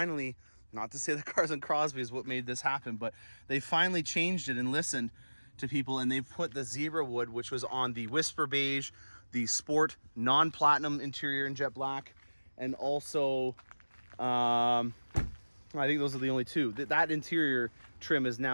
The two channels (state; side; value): inverted; both; correlation -1.00